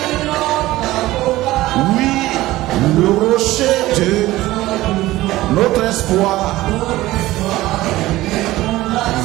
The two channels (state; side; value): quieter; left; 17.1 dB